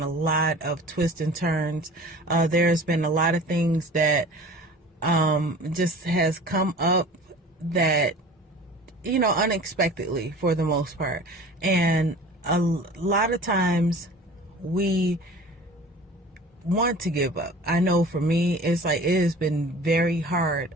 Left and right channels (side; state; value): both; normal; correlation 0.42